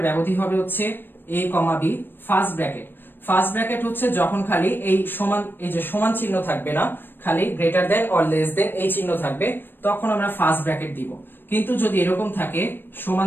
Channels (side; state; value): right; late; 0.097 ms